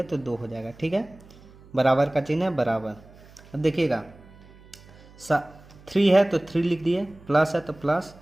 तो 2 हो जाएगा, ठीक है। बराबर का चिन्ह है, बराबर। अब देखिएगा 3 है तो 3 लिख दिए, प्लस है तो प्लस,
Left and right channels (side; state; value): right; noise; hum, 23 dB below the sound